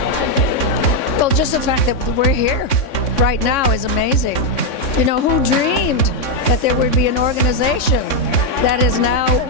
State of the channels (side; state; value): right; late; 3.6 ms